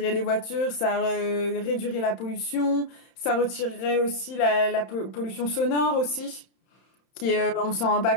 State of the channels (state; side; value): late; right; 31 ms